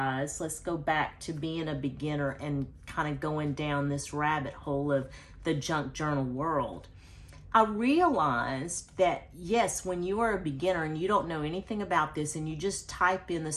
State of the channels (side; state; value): both; identical; correlation 1.00